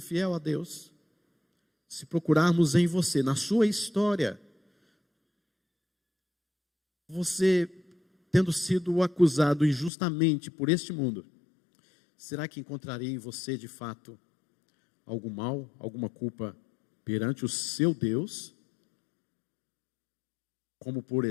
fiel a Deus? Se procurarmos em você, na sua história, você tendo sido acusado injustamente por este mundo, será que encontraria em você de fato algum mal, alguma culpa perante o seu Deus? Como, por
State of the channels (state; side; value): drops out; right; at 9.9 s